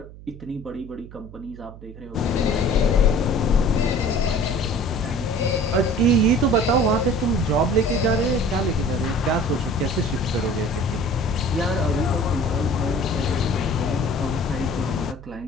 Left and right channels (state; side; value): noise; right; hum, 17 dB below the sound